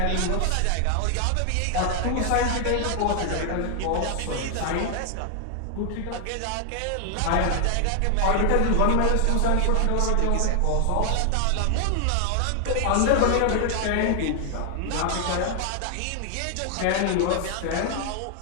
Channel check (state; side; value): different; both; correlation 0.00